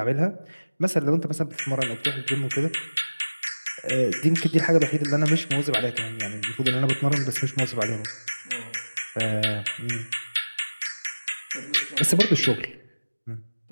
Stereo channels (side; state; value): both; inverted; correlation -1.00